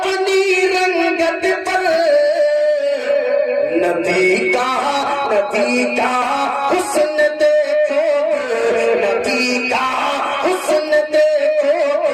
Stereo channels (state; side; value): identical; both; correlation 1.00